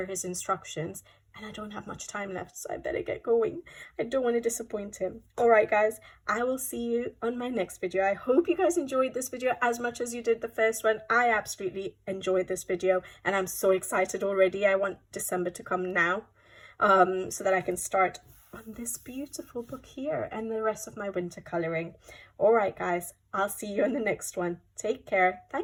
his instructions, and I don't have much time left, so I better get going. I don't want to disappoint him. All right, guys, I will see you on my next video. I hope you guys enjoyed this video as much as you did the first one. I absolutely enjoyed this video, and I'm so excited already. I want December to come now so that I can start on this beautiful book here and the rest of my winter colouring. All right, guys, I'll see you in the next one. Take care.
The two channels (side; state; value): both; identical; correlation 1.00